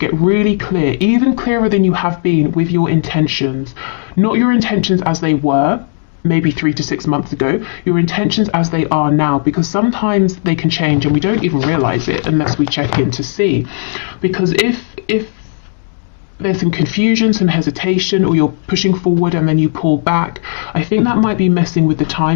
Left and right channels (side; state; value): right; silent; 70 dB below the other